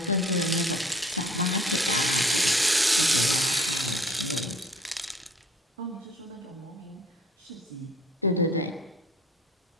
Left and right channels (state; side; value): normal; both; correlation 0.54